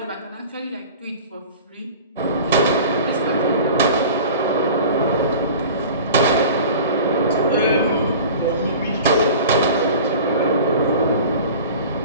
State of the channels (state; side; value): inverted; both; correlation -0.39